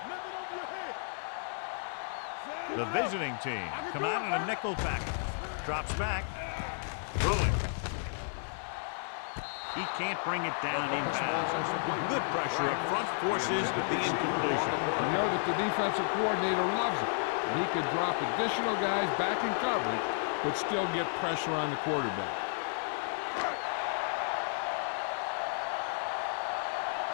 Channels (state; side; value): silent; right; digital silence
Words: Nothing over your head. Get it up. The visiting team come out in a nickel package. Drops back. Throwing. He can't bring it down inbounds. Good pressure up front forces the incompletion. You know that the defensive coordinator loves it. And he could drop additional guys back in coverage, but still get pressure on the quarterback.